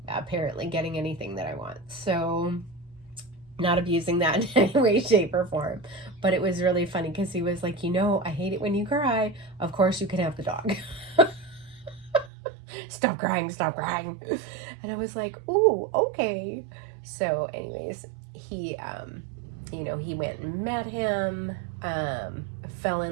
apparently getting anything that I want. So, not abusing that in any way, shape, or form. But it was really funny, because he was like, I hate it when you cry. Of course you can have the dog. Stop crying, stop crying. And I was like, ooh, okay. So anyways, he went and met him, fell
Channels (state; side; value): drops out; left; at 12.3 s